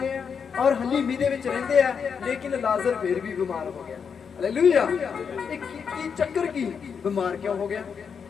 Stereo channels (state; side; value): quieter; right; 6.5 dB